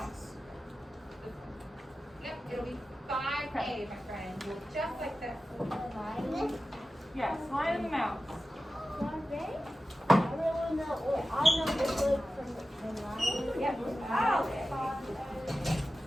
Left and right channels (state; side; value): normal; both; correlation 0.94